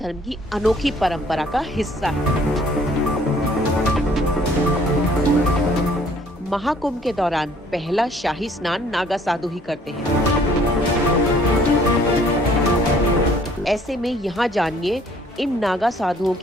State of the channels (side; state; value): both; normal; correlation 0.59